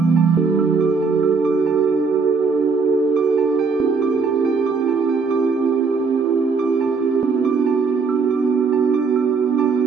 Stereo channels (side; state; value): left; quieter; 4.9 dB